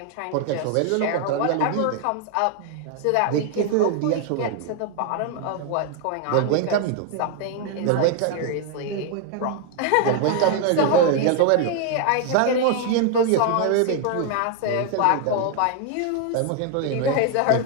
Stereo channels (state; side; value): different; both; correlation 0.00